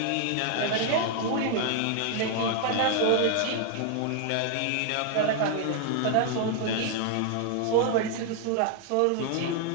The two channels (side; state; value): both; different; correlation 0.00